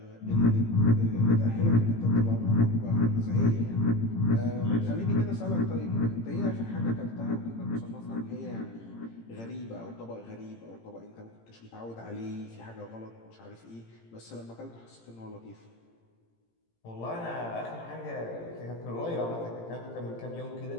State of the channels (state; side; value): late; right; 18 ms